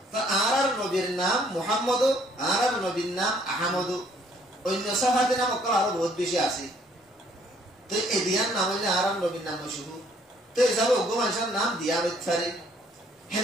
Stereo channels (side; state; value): both; normal; correlation 0.63